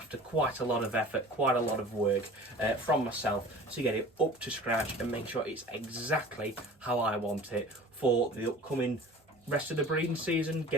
quite a lot of effort, quite a lot of work from myself to get it up to scratch and make sure it's exactly how I want it for the upcoming rest of the breeding season,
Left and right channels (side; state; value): both; normal; correlation 0.43